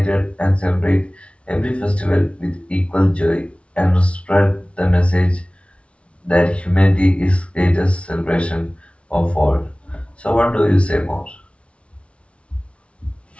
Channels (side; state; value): right; late; 0.061 ms